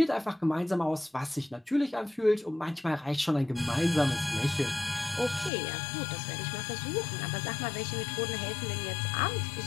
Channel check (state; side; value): drops out; right; at 5.5 s